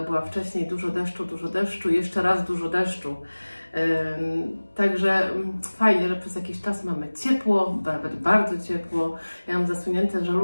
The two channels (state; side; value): inverted; both; correlation -1.00